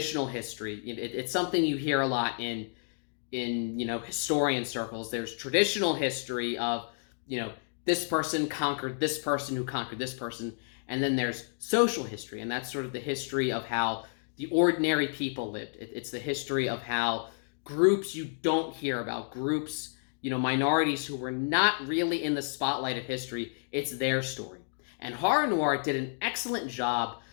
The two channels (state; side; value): silent; right; digital silence